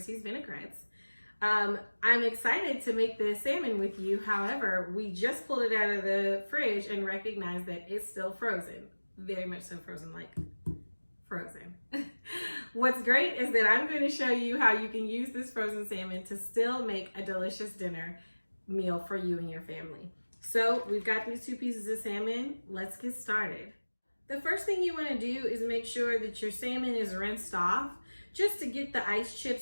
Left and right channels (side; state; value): both; inverted; correlation -1.00